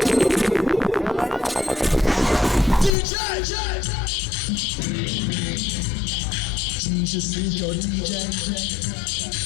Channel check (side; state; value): right; drops out; at 3.0 s